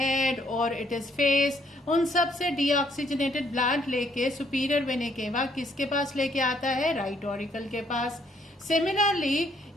और इट इज फेस, उन सब से डीऑक्सीजनेटेड ब्लड लेके सुपीरियर वेना केवा किसके पास लेके आता है, राइट ऑरिकल के पास। सिमिलरली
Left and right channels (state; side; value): normal; both; correlation 0.68